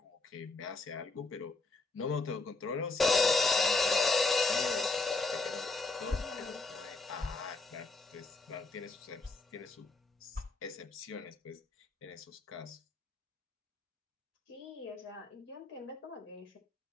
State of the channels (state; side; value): quieter; right; 3.6 dB